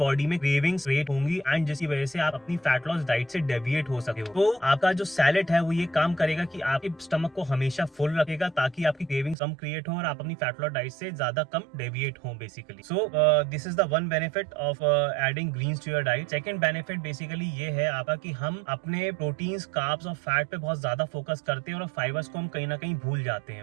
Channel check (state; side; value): drops out; left; at 9.3 s